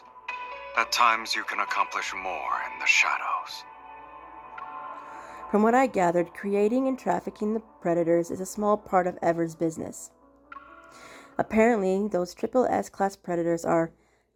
At times you can accomplish more in the shadows. From what I gathered, creating and trafficking the predators is a small part of Ever's business. Apparently, those SSS class predators are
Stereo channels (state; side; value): identical; both; correlation 1.00